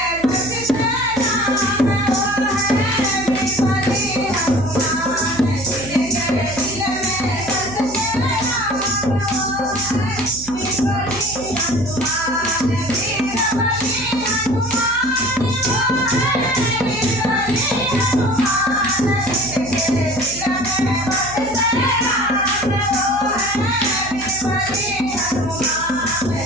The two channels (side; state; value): right; noise; hum, 16 dB below the sound